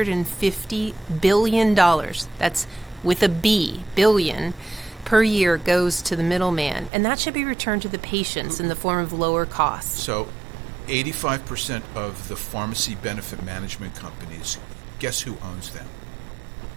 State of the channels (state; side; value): drops out; left; at 6.9 s